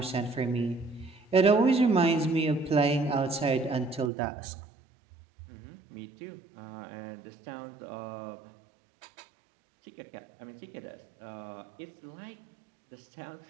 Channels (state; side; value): drops out; left; at 4.1 s